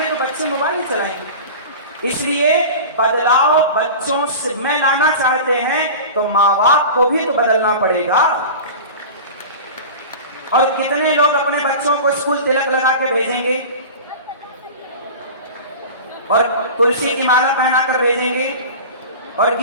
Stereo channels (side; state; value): both; inverted; correlation -0.34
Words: तो बच्चे मोबाइल ही चलाएंगे। इसलिए बदलाव बच्चों से में लाना चाहते हैं तो माँ बाप को भी तो बदलना पड़ेगा। और कितने लोग अपने बच्चों को स्कूल तिलक लगा के भेजेंगे और तुलसी की माला पहनाकर भेजेंगे और